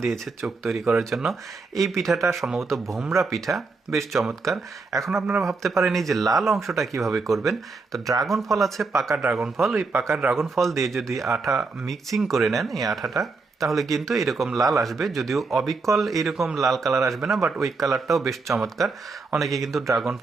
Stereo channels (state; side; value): quieter; left; 4.1 dB